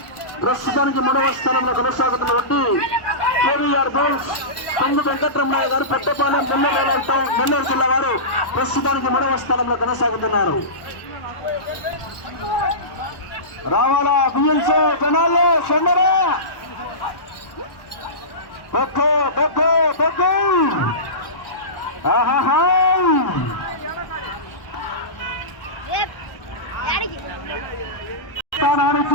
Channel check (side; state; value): right; late; 1.1 ms